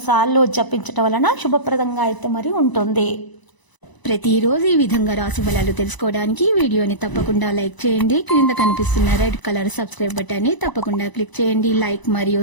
సార్లు జపించడం వలన శుభప్రదంగా అయితే మరి ఉంటుంది. ప్రతిరోజు ఈ విధంగా రాశి ఫలాలు తెలుసుకోవడానికి వీడియోని తప్పకుండా లైక్ చేయండి. క్రింద కనిపిస్తున్న రెడ్ కలర్ సబ్స్క్రైబ్ బటన్ ని తప్పకుండా క్లిక్ చేయండి. లైక్ మరియు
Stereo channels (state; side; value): late; right; 1.0 ms